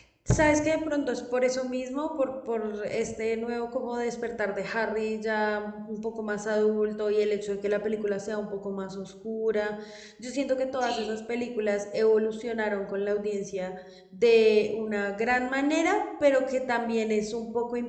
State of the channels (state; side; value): identical; both; correlation 1.00